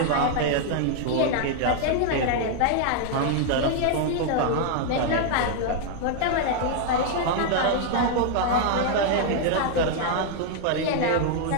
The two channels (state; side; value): different; both; correlation 0.00